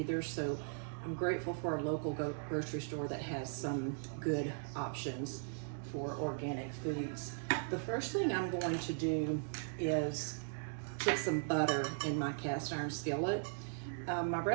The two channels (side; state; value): left; silent; digital silence